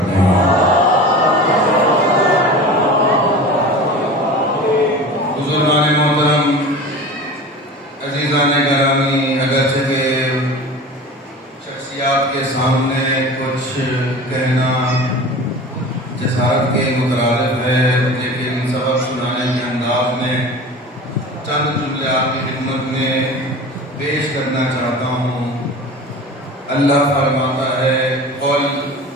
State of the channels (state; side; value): normal; both; correlation 0.36